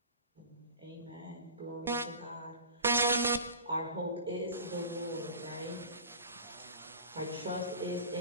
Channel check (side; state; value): both; inverted; correlation -0.36